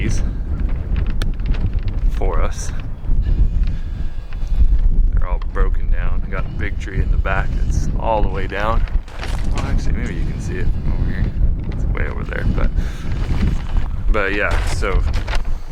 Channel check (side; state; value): both; identical; correlation 1.00